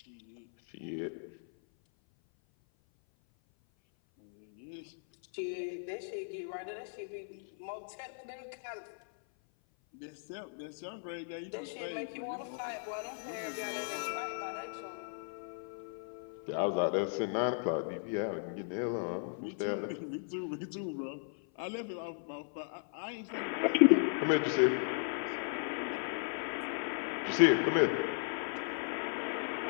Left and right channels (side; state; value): right; silent; 54 dB below the other